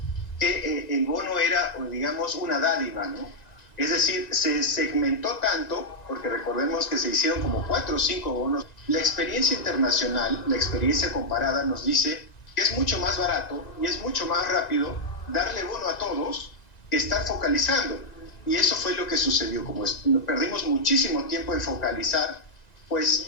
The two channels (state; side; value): late; right; 1.9 ms